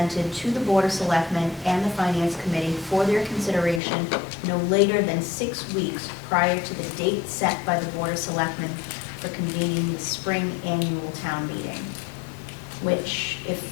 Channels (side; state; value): right; drops out; at 3.8 s